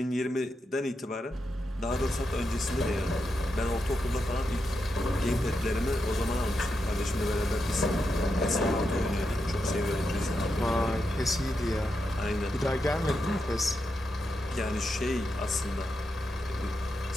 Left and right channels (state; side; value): normal; both; correlation 0.85